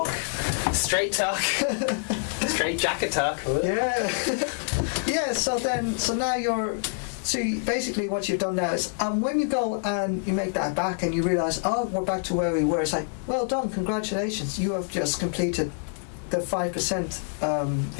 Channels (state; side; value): silent; right; digital silence